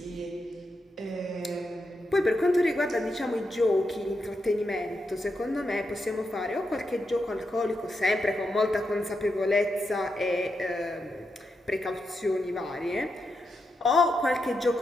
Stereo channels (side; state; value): both; normal; correlation 0.85